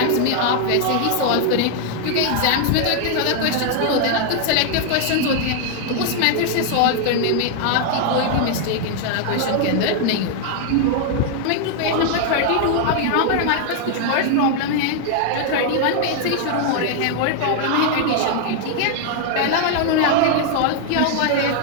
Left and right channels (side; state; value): both; different; correlation 0.00